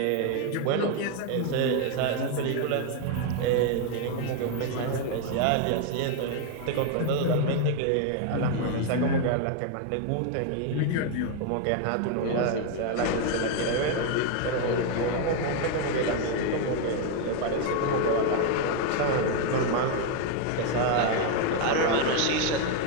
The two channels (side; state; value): both; different; correlation 0.01